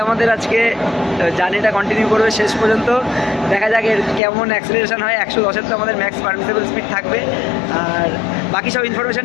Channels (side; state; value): right; drops out; at 4.2 s